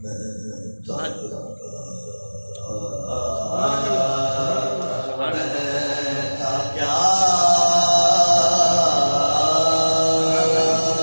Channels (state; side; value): inverted; both; correlation -1.00